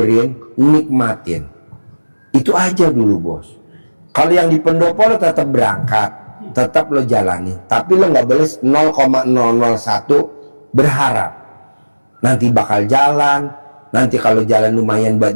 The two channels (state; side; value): inverted; both; correlation -1.00